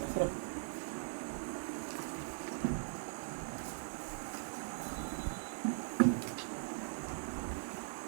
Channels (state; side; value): silent; left; digital silence